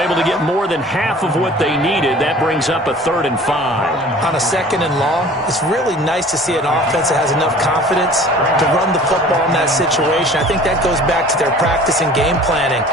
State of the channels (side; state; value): both; normal; correlation 0.46